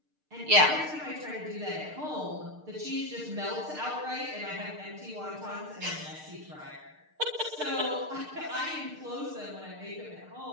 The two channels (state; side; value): late; left; 6.6 ms